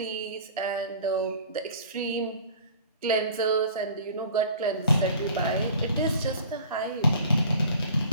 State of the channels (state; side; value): inverted; both; correlation -0.46